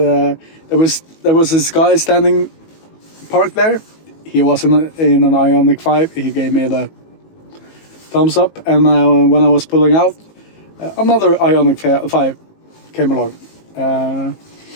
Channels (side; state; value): right; late; 19 ms